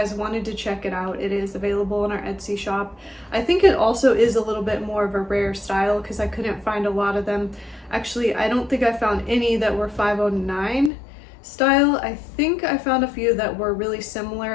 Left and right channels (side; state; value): right; drops out; at 10.9 s